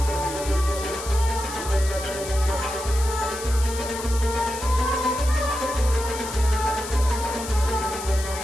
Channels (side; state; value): left; noise; hiss, 10 dB below the sound